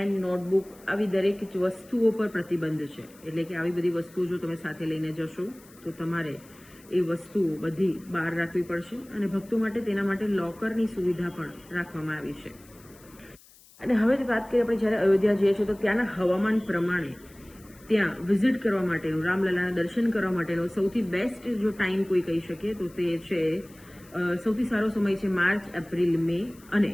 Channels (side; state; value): left; noise; hiss, 25 dB below the sound